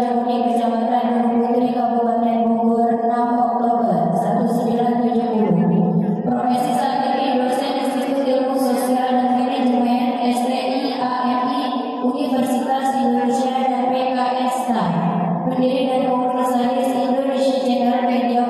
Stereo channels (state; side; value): identical; both; correlation 1.00